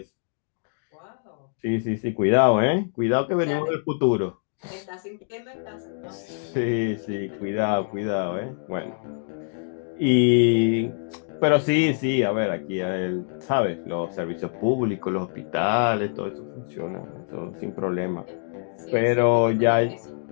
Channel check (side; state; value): right; silent; digital silence